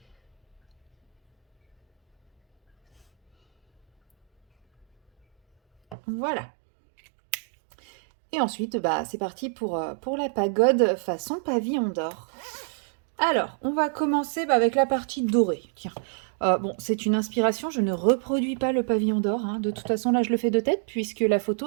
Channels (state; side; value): drops out; left; at 6.0 s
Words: Voilà. Et ensuite, c'est parti pour la pagode façon pavillon d'or. Alors, on va commencer avec la partie dorée. Tiens, bon, c'est une inspiration. Je ne reproduis pas le pavillon d'or. Hein. De toute façon, là, je le fais de tête puisque la